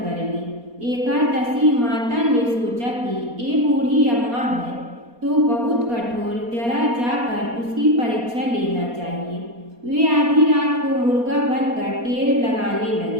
ली। एकादशी माता ने सोचा कि ये बूढ़ी अम्मा है तो बहुत कठोर, जरा जाकर उसकी परीक्षा लेना चाहिए। वे आधी रात को मुर्गा बनकर टेर लगाने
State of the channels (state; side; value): late; left; 4.2 ms